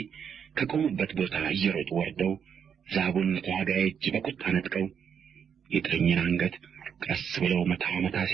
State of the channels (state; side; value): quieter; left; 7.6 dB